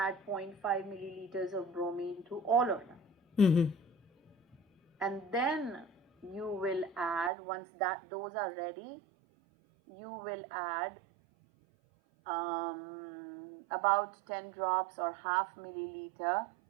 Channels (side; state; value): left; drops out; at 7.3 s